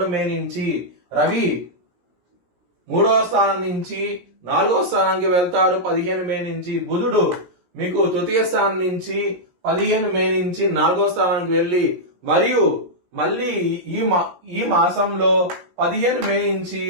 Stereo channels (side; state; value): left; late; 17 ms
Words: మే నుంచి. రవి 3వ స్థానం నుంచి 4వ స్థానానికి వెళ్తారు 15 మే నుంచి. బుధుడు మీకు తృతీయ స్థానం నుంచి 15 మే నుంచి 4వ స్థానానికి వెళ్లి మరియు మళ్ళీ ఈ మాసంలో 15 మే నుంచి